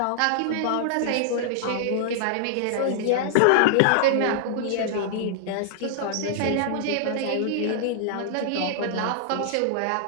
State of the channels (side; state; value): both; different; correlation -0.01